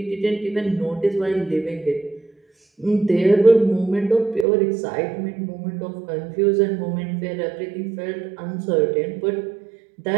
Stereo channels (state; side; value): drops out; left; at 4.5 s